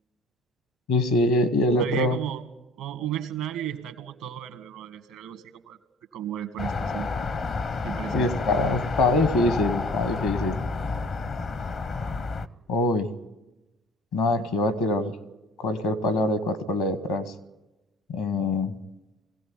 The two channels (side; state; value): both; normal; correlation 0.47